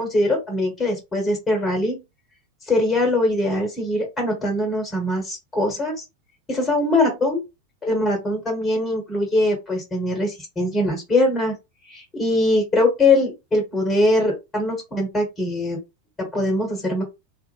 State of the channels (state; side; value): normal; both; correlation 0.61